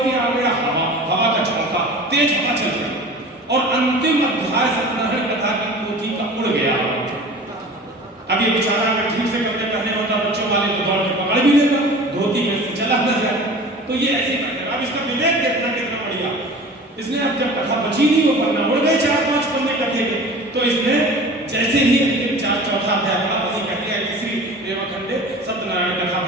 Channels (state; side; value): normal; both; correlation 0.39